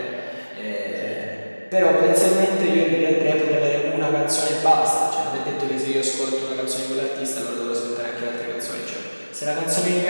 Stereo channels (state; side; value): inverted; both; correlation -1.00